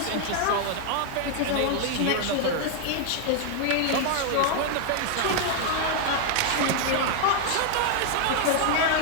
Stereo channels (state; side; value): different; both; correlation 0.00